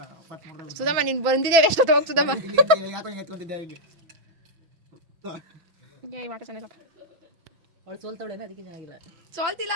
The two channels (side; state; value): left; late; 6.1 ms